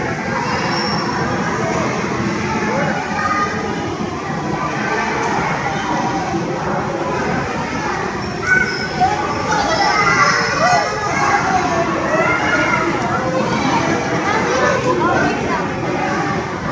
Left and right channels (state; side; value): identical; both; correlation 1.00